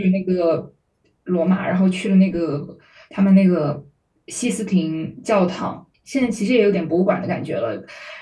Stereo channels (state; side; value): identical; both; correlation 1.00